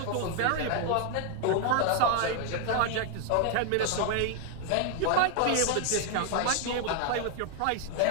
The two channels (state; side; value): different; both; correlation 0.00